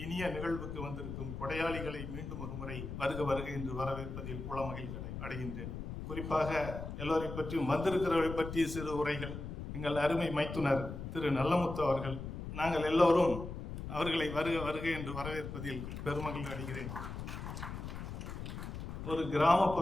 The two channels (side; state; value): left; noise; rumble, 7 dB below the sound